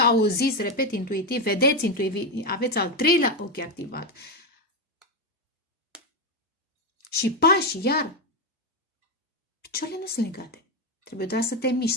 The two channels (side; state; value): both; normal; correlation 0.09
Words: repet, intuitiv, vedeți intuitiv, aveți al treilea ochi activat. Și pași, iar, picioarele nu sunt legate. Trebuie doar să te